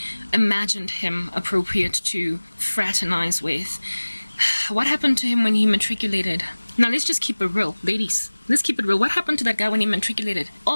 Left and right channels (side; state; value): both; inverted; correlation -1.00